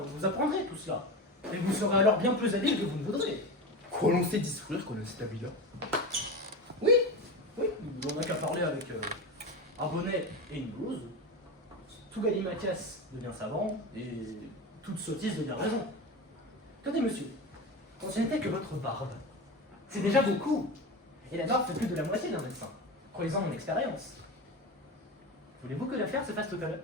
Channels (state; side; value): normal; both; correlation 0.24